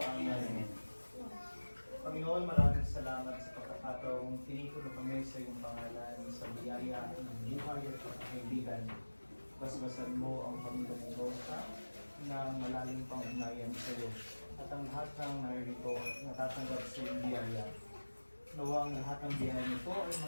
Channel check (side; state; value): both; inverted; correlation -1.00